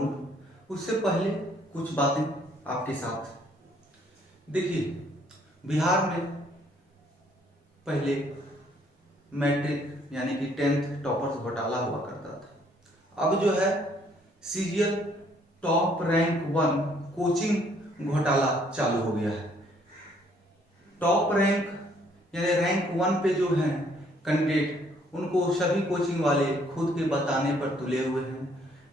उससे पहले कुछ बातें आपके साथ। देखिए, बिहार में पहले मैट्रिक यानी कि 10th टॉपर्स घोटाला हुआ करता था। अब जो है सीरियल टॉप रैंक 1 कोचिंग घोटाला चालू हो गया है। टॉप रैंक यानी रैंक 1 पे जो हैं कैंडिडेट, उनको सभी कोचिंग वाले खुद के बताने पर तुले हुए हैं,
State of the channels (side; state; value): both; normal; correlation 0.65